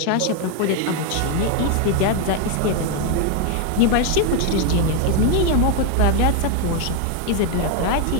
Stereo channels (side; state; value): both; different; correlation 0.01